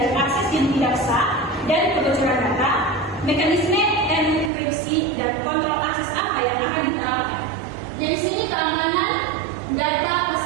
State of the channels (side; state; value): left; drops out; at 4.5 s